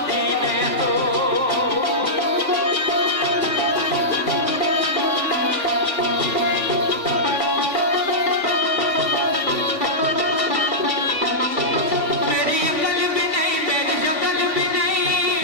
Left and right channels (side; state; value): left; late; 3.5 ms